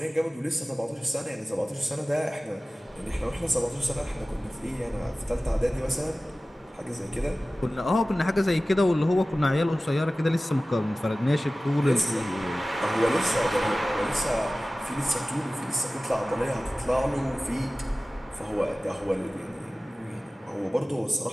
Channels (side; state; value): both; normal; correlation 0.97